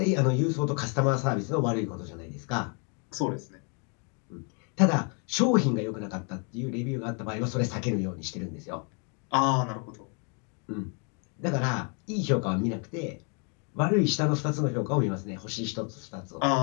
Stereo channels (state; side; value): quieter; right; 37.6 dB